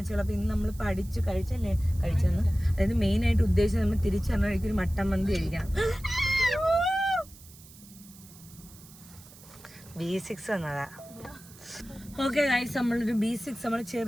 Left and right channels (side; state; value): right; noise; hiss, 21 dB below the sound